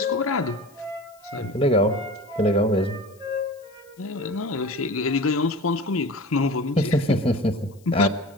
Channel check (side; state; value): left; noise; hiss, 30 dB below the sound